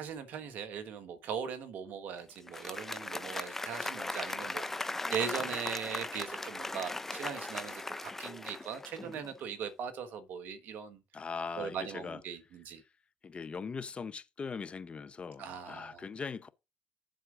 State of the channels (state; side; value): normal; both; correlation 0.63